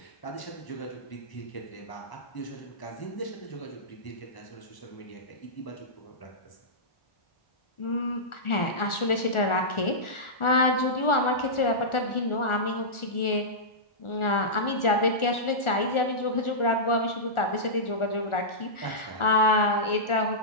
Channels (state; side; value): late; right; 1.4 ms